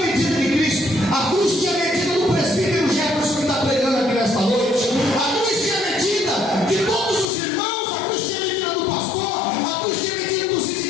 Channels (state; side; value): drops out; right; at 7.3 s